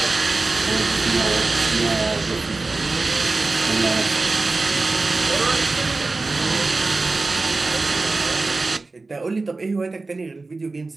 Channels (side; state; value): left; quieter; 3.5 dB